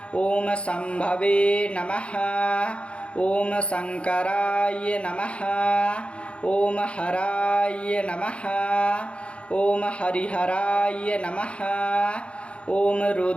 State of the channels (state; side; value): late; right; 0.060 ms